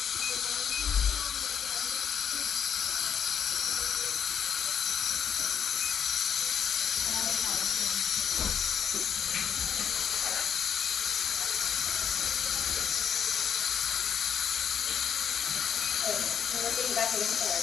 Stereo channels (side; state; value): right; quieter; 7.9 dB